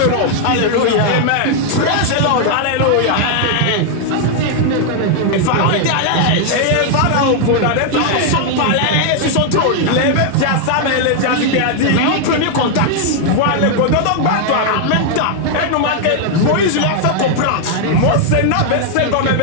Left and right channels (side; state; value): both; different; correlation 0.00